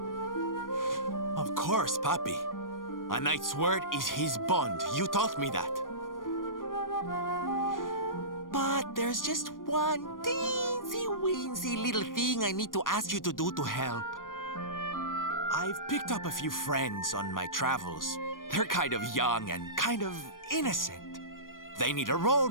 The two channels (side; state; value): right; late; 0.90 ms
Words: Of course, Papi. A knight's word is his bond. You taught me that. But there's just one teensy-weensy little thing I need to ask you to do to help. I've picked up a few friends on my travels. They're kind of young and kind of innocent. They need a role